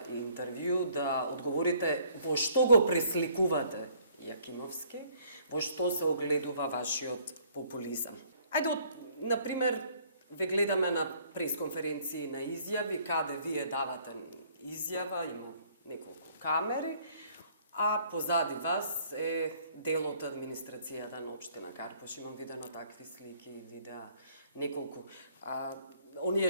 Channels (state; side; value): inverted; both; correlation -0.61